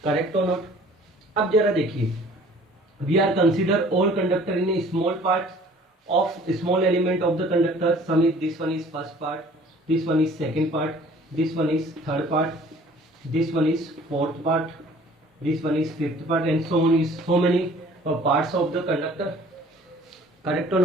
Correct or not? अब जरा देखिए, we are consider all conductor in a small part of small element of the conductor. Some is this one is first part, this one is second part, this one is third part, this one is fourth part, this one is fifth part, and so on is so many parts of the conductor. Correct or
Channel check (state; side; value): normal; both; correlation 0.52